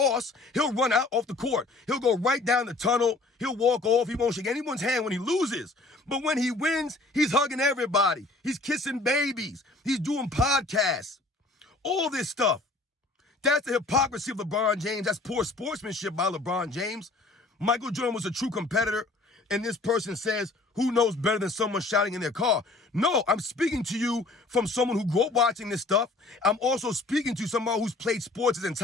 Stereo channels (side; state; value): right; quieter; 3.2 dB